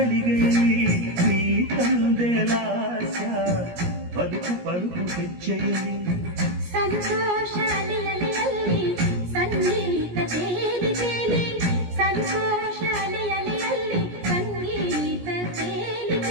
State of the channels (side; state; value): left; late; 17 ms